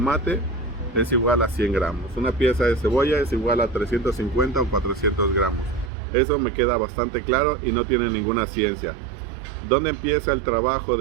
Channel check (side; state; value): left; drops out; at 5.9 s